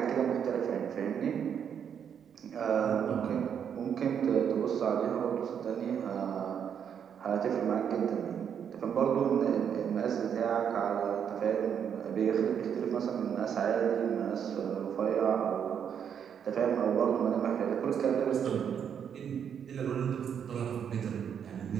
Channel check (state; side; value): quieter; left; 8.1 dB